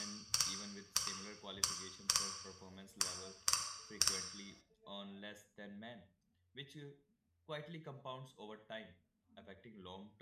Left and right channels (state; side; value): identical; both; correlation 1.00